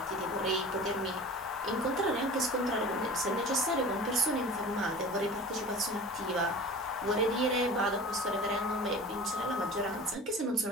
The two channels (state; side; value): normal; both; correlation 0.38